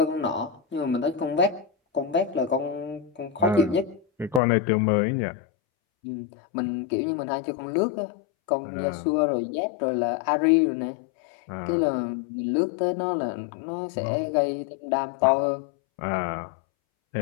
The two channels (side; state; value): right; drops out; at 4.4 s